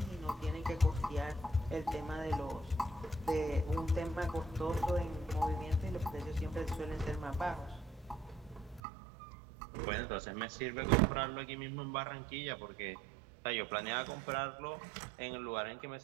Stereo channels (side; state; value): left; drops out; at 8.8 s